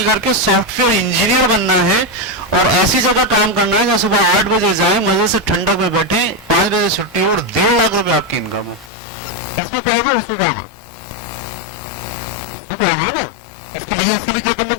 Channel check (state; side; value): drops out; right; at 8.9 s